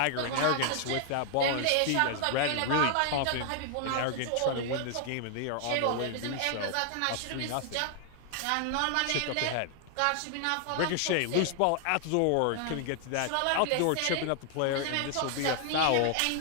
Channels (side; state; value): both; different; correlation 0.00